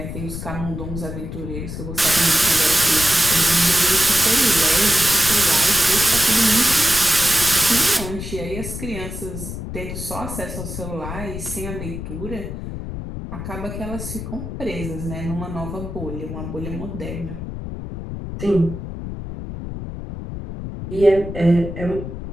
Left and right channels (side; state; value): left; noise; rumble, 8 dB below the sound